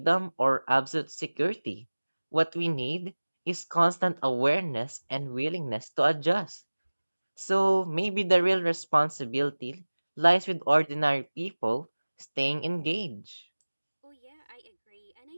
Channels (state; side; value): inverted; both; correlation -1.00